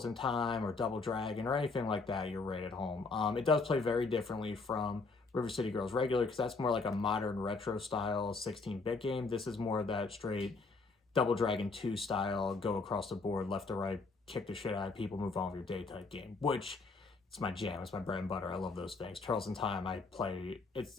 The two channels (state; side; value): quieter; right; 4.0 dB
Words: in Time or Double Dragon or anything like that, you're right at home. It does play very differently from River City Girls regular because that's more like a modern retro style 16-bit game. This is more of that straight Double Dragon 2 style, go across the board, left to right, kick the shit out of people, move on with your day type game, which it's my jam. It's my bread and butter. I love those things. Turtles in Time, I play.